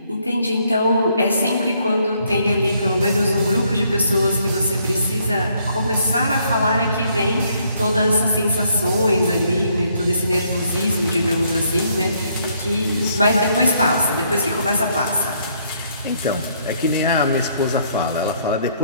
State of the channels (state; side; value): inverted; both; correlation -0.69